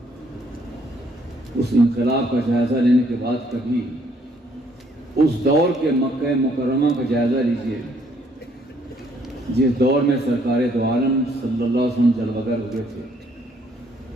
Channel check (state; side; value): normal; both; correlation 0.66